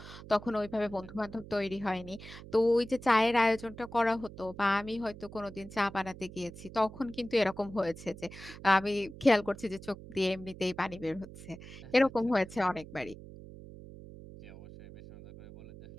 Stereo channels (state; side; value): noise; right; hum, 15 dB below the sound